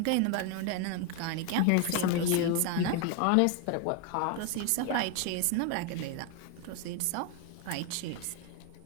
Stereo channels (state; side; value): different; both; correlation 0.01